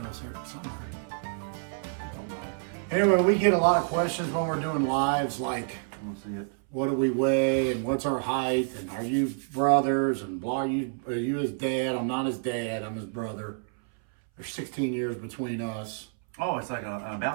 somewhere. Anyway, we get a lot of questions when we're doing lives, like, I want to see it. what do we weigh, and what's our height, and are you brothers, and blah, are you his dad? I'm not his dad, I'm his brother. There's 16 years between us. Oh, it's like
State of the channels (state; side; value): silent; left; 59 dB below the other